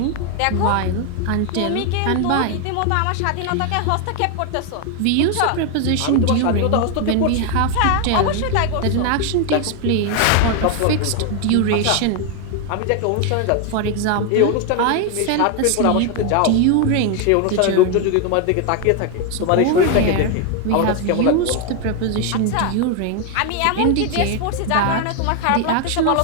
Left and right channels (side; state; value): both; different; correlation 0.01